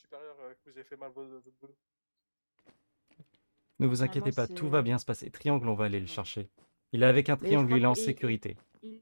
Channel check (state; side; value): inverted; both; correlation -1.00